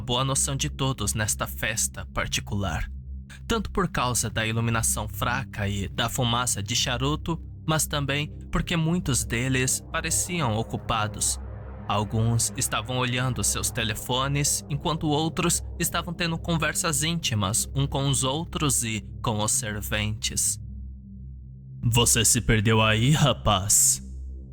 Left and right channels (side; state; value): both; identical; correlation 1.00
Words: noção de todos nesta festa particular, tanto por causa da iluminação fraca e da fumaça de charuto, mas também porque muitos deles pareciam ocupados. Alguns estavam olhando seus telefones, enquanto outros estavam tendo conversas íntimas uns com os outros e com os serventes. Você se perdeu aí, rapaz?